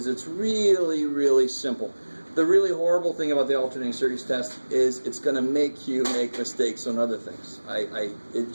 it's really, really simple. The really horrible thing about the alternating series test is it's going to make you make mistakes on other things. It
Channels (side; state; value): both; inverted; correlation -1.00